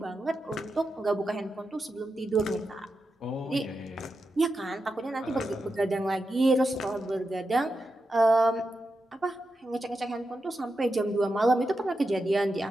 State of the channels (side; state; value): both; normal; correlation 0.88